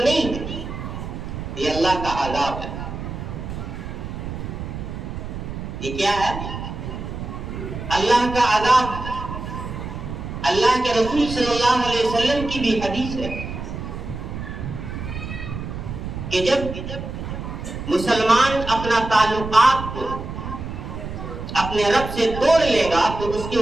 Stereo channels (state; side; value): noise; right; rumble, 7 dB below the sound